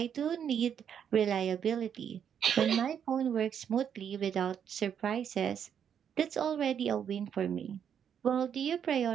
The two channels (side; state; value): left; quieter; 8.4 dB